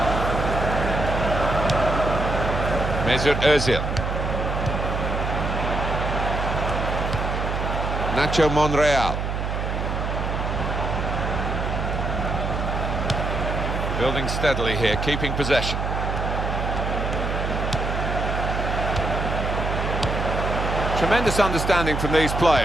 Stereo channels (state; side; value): noise; right; hum, 2 dB below the sound